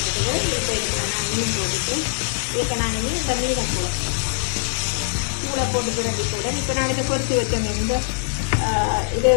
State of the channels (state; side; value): silent; right; 62 dB below the other